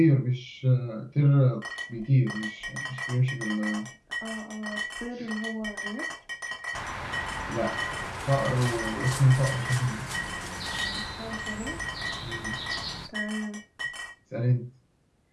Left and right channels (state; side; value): identical; both; correlation 1.00